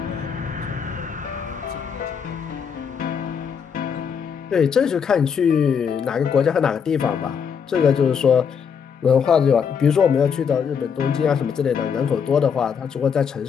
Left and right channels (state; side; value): quieter; right; 6.9 dB